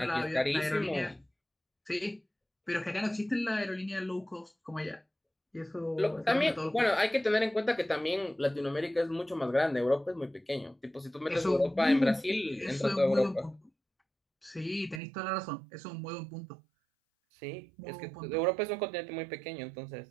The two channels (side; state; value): left; drops out; at 15.0 s